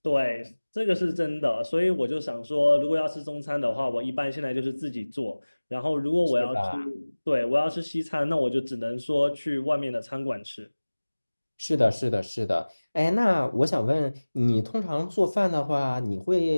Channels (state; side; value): inverted; both; correlation -1.00